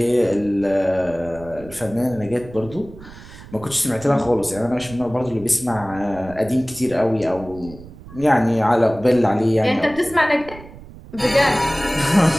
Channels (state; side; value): noise; right; rumble, 18 dB below the sound